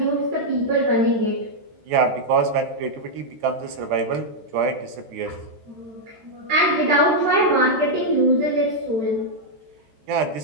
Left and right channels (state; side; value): late; left; 14 ms